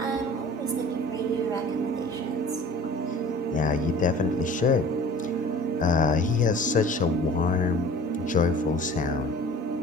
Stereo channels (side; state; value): both; normal; correlation 0.45